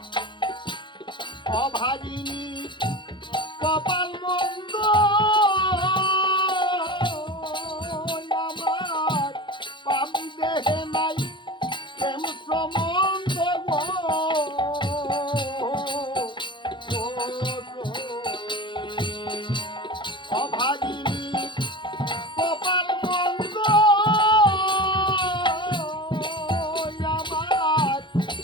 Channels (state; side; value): late; right; 0.23 ms